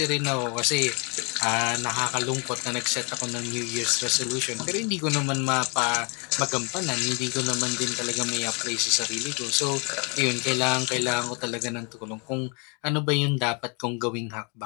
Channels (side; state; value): right; quieter; 33.4 dB